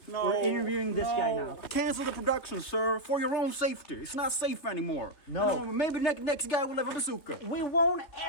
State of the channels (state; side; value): late; right; 3.3 ms